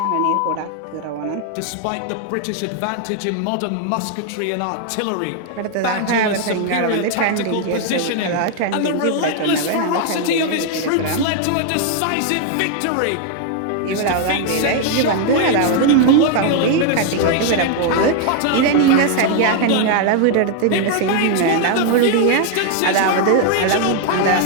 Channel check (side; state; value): both; different; correlation 0.00